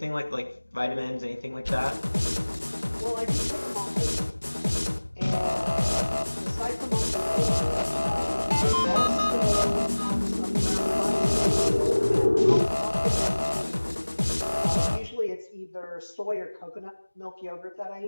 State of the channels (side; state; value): both; inverted; correlation -1.00